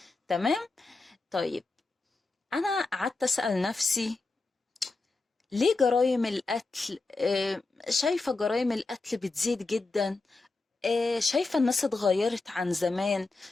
تمام. طيب، أنا قعدت أسأل نفسي ليه جرائم القتل، شايفة جرائم القتل بتزيد جدا. شايفة الناس اتغيرت عن زمان.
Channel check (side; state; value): right; quieter; 3.5 dB